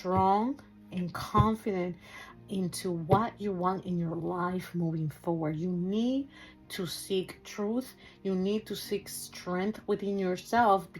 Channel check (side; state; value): both; identical; correlation 1.00